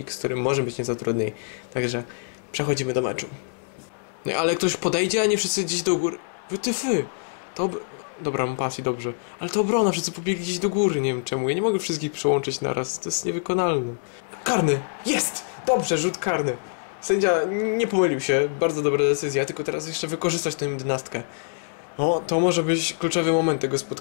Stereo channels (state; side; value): silent; right; digital silence